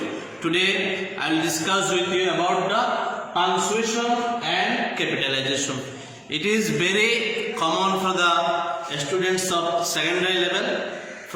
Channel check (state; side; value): identical; both; correlation 1.00